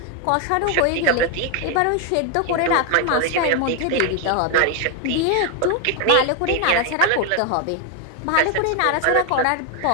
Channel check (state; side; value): different; both; correlation 0.01